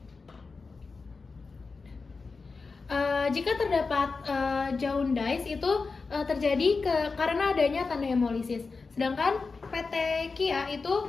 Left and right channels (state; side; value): quieter; right; 4.4 dB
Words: Jika terdapat jaundice itu terjadi karena adanya tanda hemolisis. Sedangkan petekia